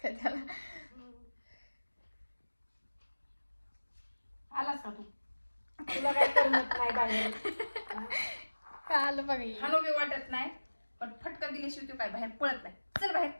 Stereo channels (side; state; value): both; inverted; correlation -1.00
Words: का त्याला आलास का तू? तुला काय करमत नाही बाहेर. का आलं बघा हे. हानो बी वाटत नाही पण फटका दिल्याशिवाय तू काय बाहेर पळत नाही. चल बाहेर